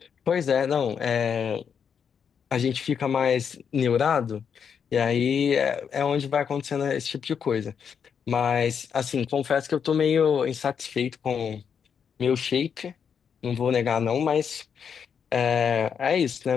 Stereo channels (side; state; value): right; quieter; 7.1 dB